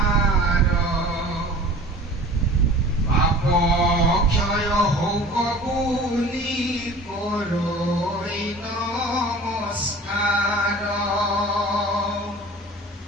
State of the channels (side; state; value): both; normal; correlation 0.42